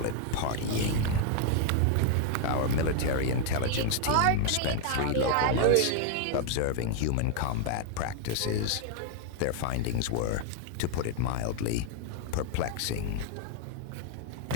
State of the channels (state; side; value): different; both; correlation 0.00